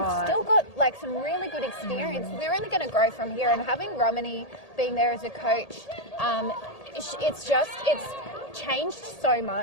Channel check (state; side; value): late; right; 1.8 ms